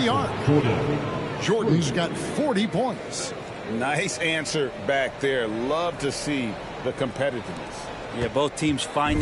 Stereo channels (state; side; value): identical; both; correlation 1.00